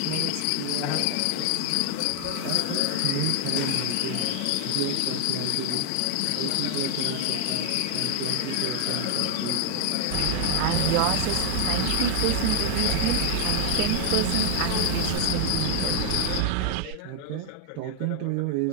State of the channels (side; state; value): both; different; correlation 0.00